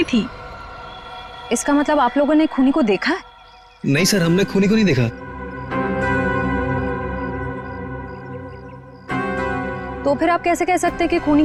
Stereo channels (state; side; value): identical; both; correlation 1.00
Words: थी। इसका मतलब आप लोगों ने खूनी को देखा है? नहीं सर, हमने खूनी को नहीं देखा। तो फिर आप कैसे कह सकते हैं कि खूनी